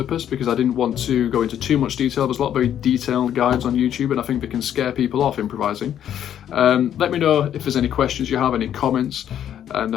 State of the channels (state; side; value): quieter; right; 10.1 dB